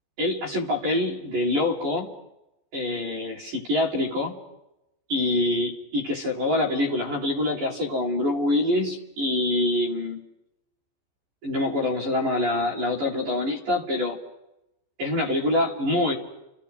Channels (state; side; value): late; left; 14 ms